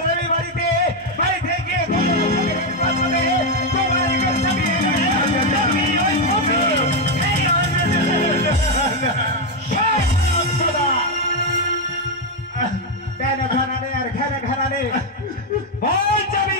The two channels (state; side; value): normal; both; correlation 0.04